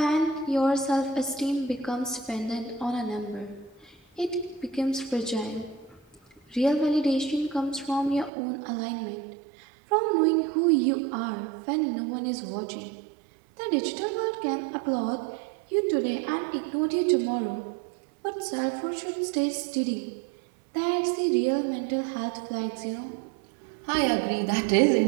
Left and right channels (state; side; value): drops out; left; at 8.3 s